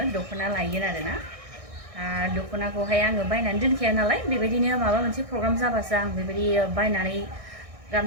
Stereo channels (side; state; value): left; late; 1.6 ms